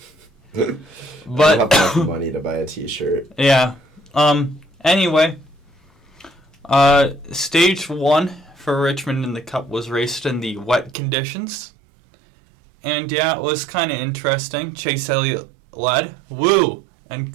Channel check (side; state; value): left; drops out; at 11.0 s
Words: But I don't have enough money to buy a T-shirt. Yeah. Anyway, Stage 1 for Richmond in the Cup was raced in the wet conditions. And yeah, it was kind of interesting. Chase Elliott led. Woo! And